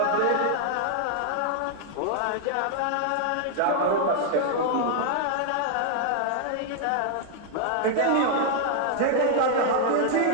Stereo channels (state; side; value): different; both; correlation -0.01